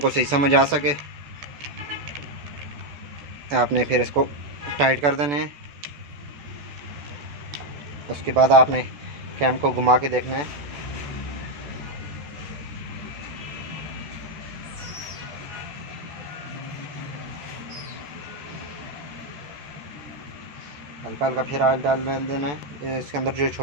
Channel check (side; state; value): left; late; 14 ms